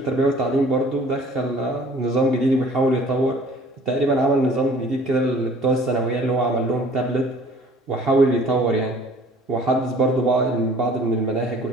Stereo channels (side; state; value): both; normal; correlation 0.51